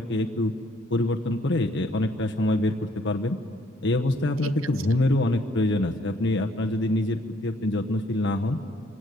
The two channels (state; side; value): normal; both; correlation 0.65